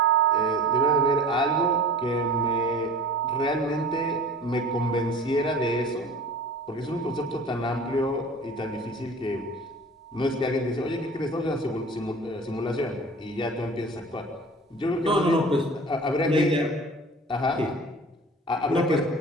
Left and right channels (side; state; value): both; normal; correlation 0.40